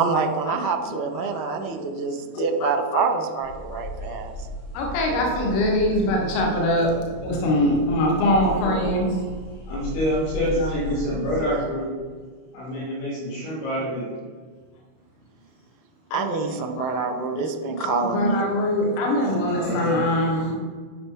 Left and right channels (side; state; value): right; late; 32 ms